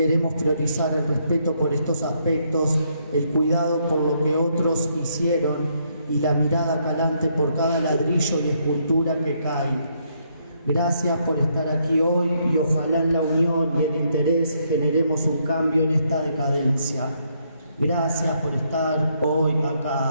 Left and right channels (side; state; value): both; inverted; correlation -0.73